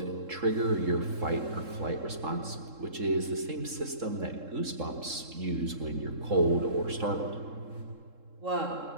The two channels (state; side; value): late; left; 3.7 ms